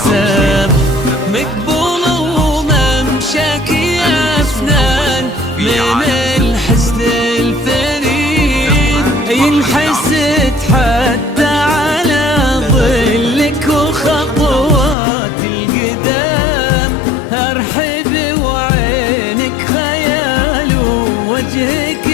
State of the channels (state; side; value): drops out; right; at 15.0 s